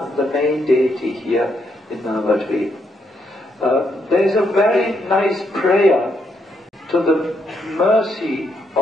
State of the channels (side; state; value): both; normal; correlation 0.77